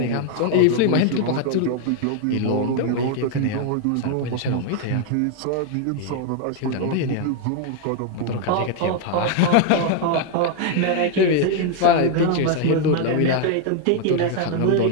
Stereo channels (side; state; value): both; different; correlation 0.00